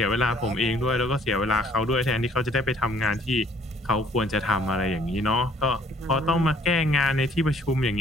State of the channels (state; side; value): normal; both; correlation 0.60